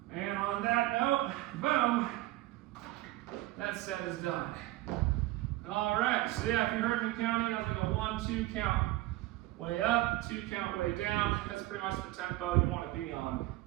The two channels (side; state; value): left; quieter; 17.6 dB